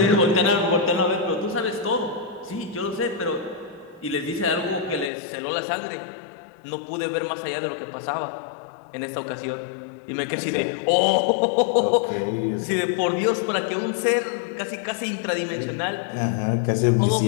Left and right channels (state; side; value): drops out; right; at 5.1 s